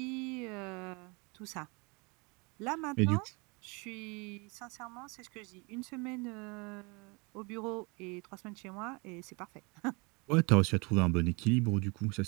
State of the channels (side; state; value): left; quieter; 29.2 dB